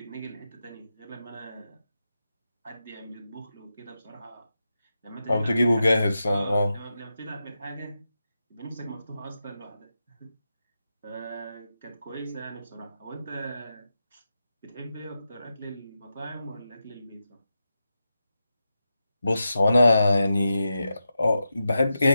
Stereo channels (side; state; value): both; inverted; correlation -0.89